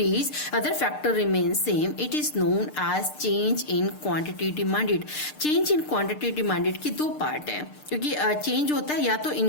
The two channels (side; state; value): right; late; 6.6 ms